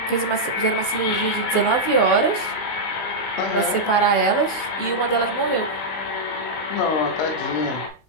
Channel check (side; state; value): right; late; 19 ms